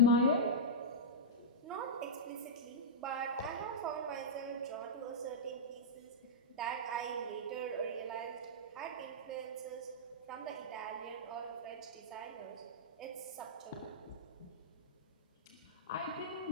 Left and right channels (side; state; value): both; normal; correlation -0.13